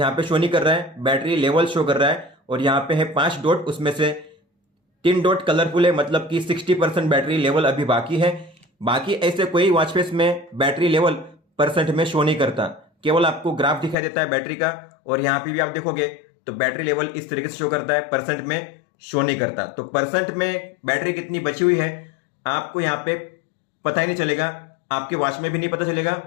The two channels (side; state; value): right; drops out; at 14.0 s